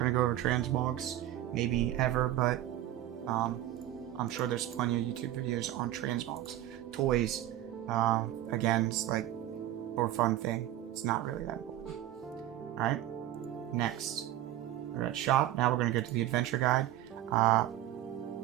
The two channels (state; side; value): quieter; left; 13.3 dB